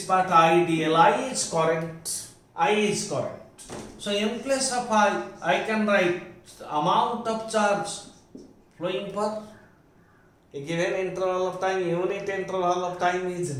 part IDL, I is current, So in place of I can write the amount of charge flowing per a given interval of time, unit interval of time is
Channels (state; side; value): identical; both; correlation 1.00